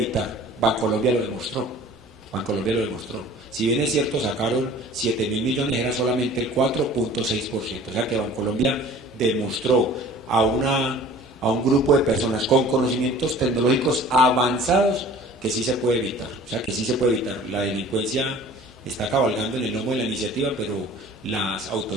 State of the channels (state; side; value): normal; both; correlation 0.46